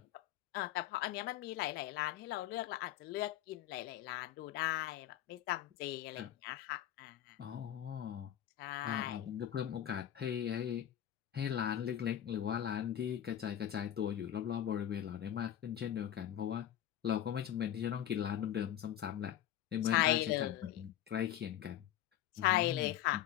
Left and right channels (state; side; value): quieter; right; 11.5 dB